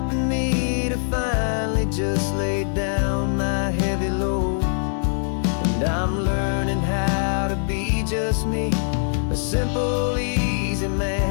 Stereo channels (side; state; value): right; silent; digital silence